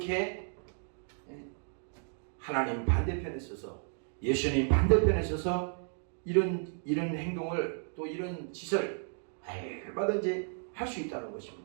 하나님 반대편에 서서, 예수님 반대편에 서서 이런 행동을, 또 이런 짓을 얼마든지 할 수 있다는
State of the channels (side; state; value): left; silent; 55 dB below the other